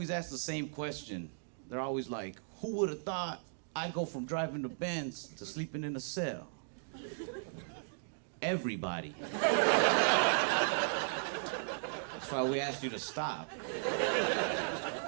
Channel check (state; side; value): silent; left; digital silence